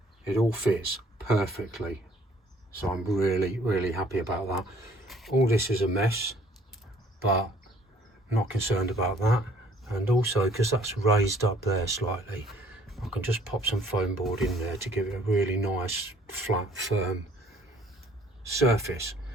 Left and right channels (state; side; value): normal; both; correlation 0.59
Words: it all fits perfectly. So I'm really, really happy about that. All this is a mess, but not concerned about that. And also, because that's raised up there slightly, I can just pop some foam board in there to give it a really nice, flat, firm surface.